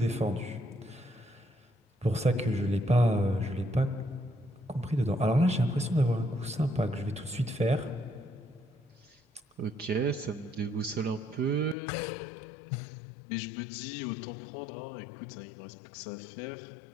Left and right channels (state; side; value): drops out; right; at 11.8 s